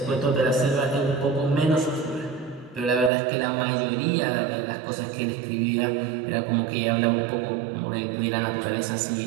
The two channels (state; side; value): drops out; left; at 3.1 s